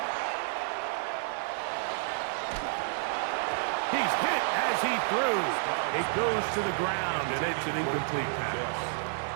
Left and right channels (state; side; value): silent; left; digital silence